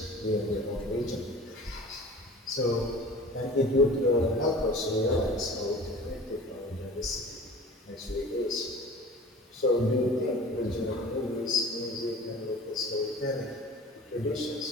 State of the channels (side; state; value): both; normal; correlation 0.42